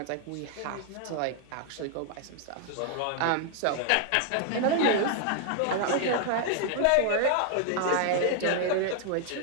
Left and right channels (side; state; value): both; different; correlation 0.00